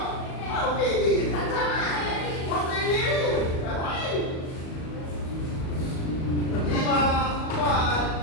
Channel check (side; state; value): right; late; 37 ms